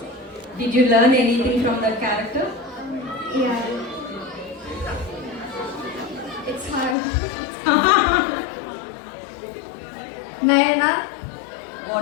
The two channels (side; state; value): right; drops out; at 7.0 s